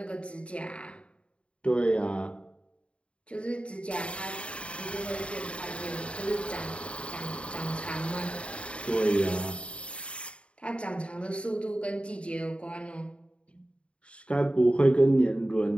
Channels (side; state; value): right; late; 0.059 ms